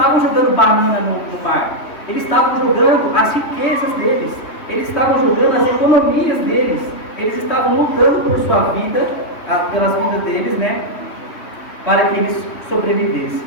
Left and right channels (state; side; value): late; right; 3.1 ms